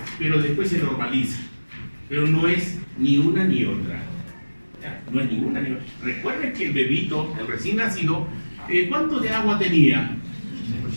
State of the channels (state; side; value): inverted; both; correlation -1.00